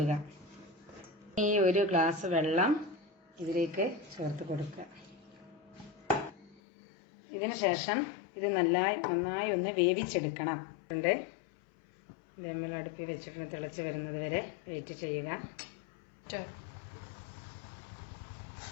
ഈ 1 ഗ്ലാസ് വെള്ളം ഇതിലേക്ക് ചേർത്ത് കൊടുക്കുക. ഇതിനു ശേഷം ഇത് നന്നായി ഒന്ന് വേവിച്ചെടുക്കണം. ഇത് നമ്മൾ അടുപ്പിൽ വെച്ചിട്ട് തിളച്ച് വരുന്നത് വരെ വെയിറ്റ് ചെയ്യുക.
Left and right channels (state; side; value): drops out; right; at 6.6 s